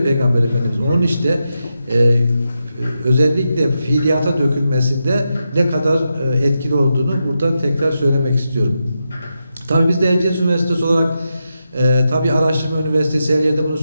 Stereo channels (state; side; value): inverted; both; correlation -0.86